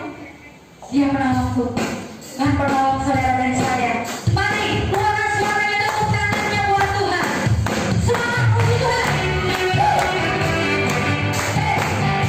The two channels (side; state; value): both; identical; correlation 1.00